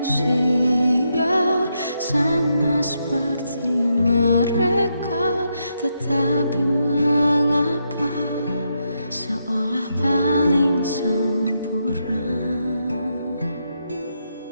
sama seperti mereka? Tetapi mengapa seolah paling sempurna?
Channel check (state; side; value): inverted; both; correlation -0.81